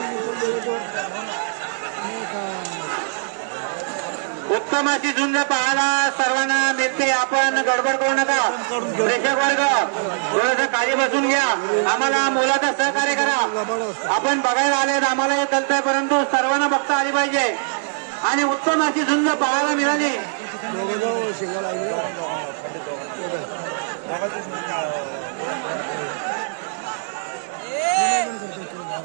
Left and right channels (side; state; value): left; silent; digital silence